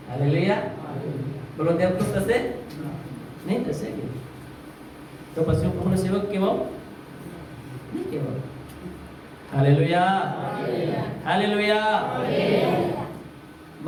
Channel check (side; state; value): both; identical; correlation 1.00